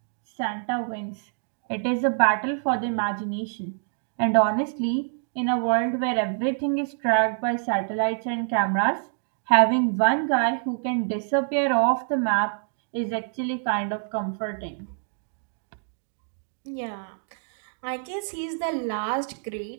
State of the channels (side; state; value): left; silent; digital silence